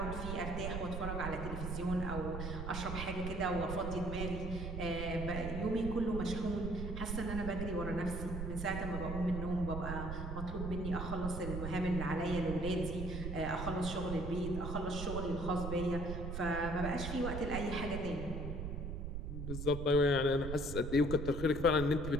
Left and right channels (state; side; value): noise; right; rumble, 4 dB below the sound